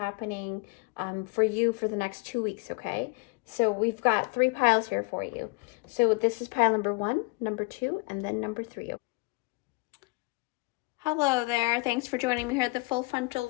for you for the next 2 weeks. Okay. So we've got 3 piles here for you. So this is pile number 1, number 2, and then number 3. Hello there. Thanks for joining me here at the full frontal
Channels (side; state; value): right; quieter; 26.2 dB